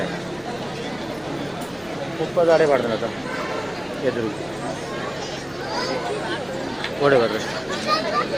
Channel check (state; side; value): noise; left; rumble, 26 dB below the sound